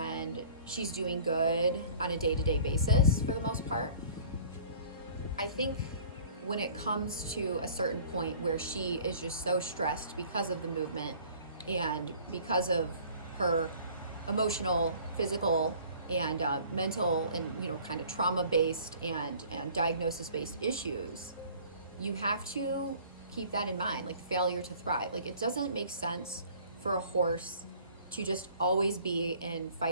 she's doing good on a day-to-day basis for the most part, I think when it comes to a certain point where she is just so stressed because of the movement and because of her emotional, physical, and mental, and, you know, kind of trauma-based and diagnosis-based issues, you have to keep that in mind, like failure to thrive. Like, it doesn't make sense for a horse to just always be in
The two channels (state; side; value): inverted; both; correlation -0.50